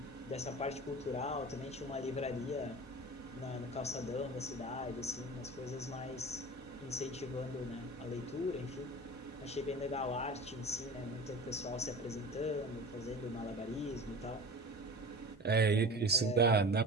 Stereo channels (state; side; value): normal; both; correlation 0.35